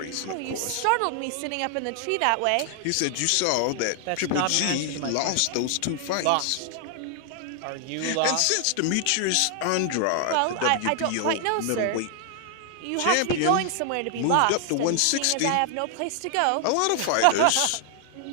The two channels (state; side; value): different; both; correlation 0.00